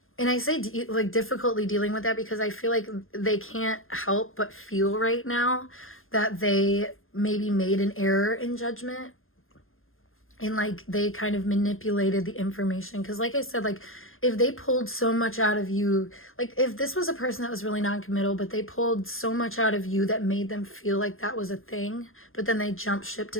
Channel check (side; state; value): right; late; 0.60 ms